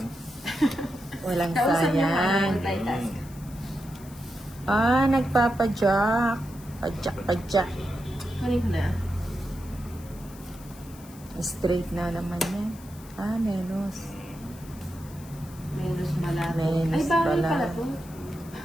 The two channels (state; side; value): noise; left; hiss, 21 dB below the sound